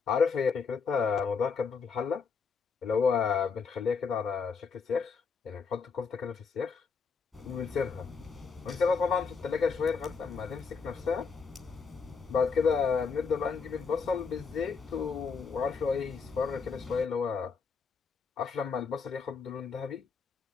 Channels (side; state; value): right; quieter; 5.4 dB